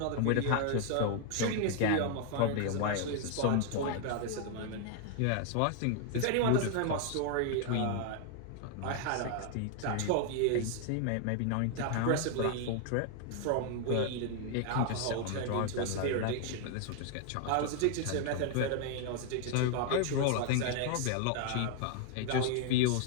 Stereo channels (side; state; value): both; different; correlation 0.00